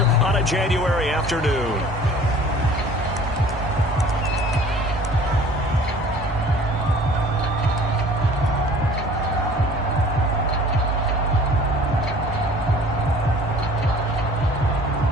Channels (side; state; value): both; normal; correlation 0.48